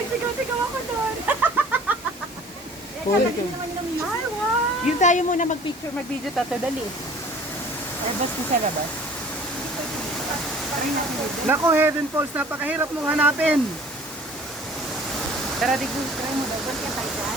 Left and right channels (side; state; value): both; normal; correlation 0.49